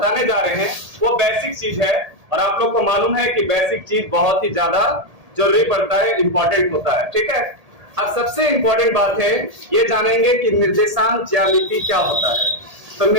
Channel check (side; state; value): left; late; 1.8 ms